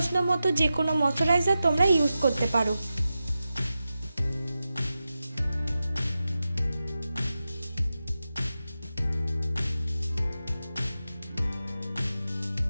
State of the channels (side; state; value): both; inverted; correlation -0.92